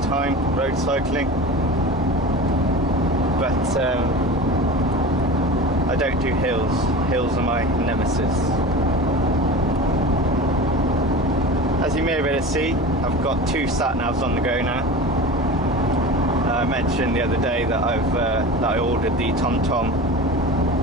time, road cycling, but I don't do hills. Hills are my nemesis. As you may be able to see, I've got 2 sat-navs on the go now. I mentioned the other day that I ordered the TomTom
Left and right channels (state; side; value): normal; both; correlation 0.33